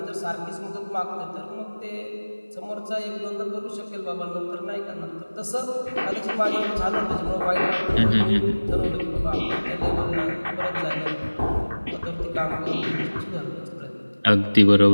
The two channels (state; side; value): inverted; both; correlation -1.00